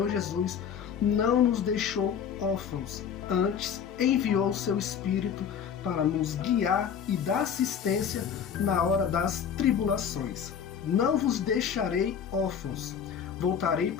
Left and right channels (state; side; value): quieter; right; 7.7 dB